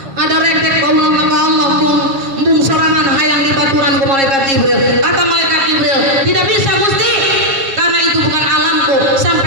Ada rektek kaulah maka Allah bung sorangan hayang dibaturan ke malaikat Jibril. Kata malaikat Jibril, tidak bisa Gusti. Karena itu bukan alamku.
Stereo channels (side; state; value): left; late; 7.4 ms